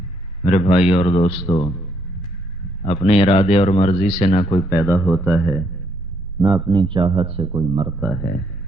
میرے بھائی اور دوستو، اپنے ارادے اور مرضی سے نہ کوئی پیدا ہوتا ہے، نہ اپنی چاہت سے کوئی مرتا ہے۔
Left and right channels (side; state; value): both; normal; correlation 0.71